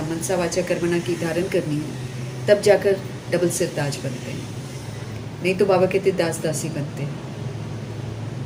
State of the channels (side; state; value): both; identical; correlation 1.00